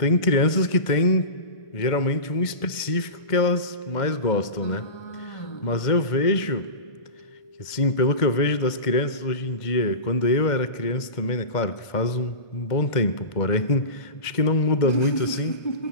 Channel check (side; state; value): right; late; 2.1 ms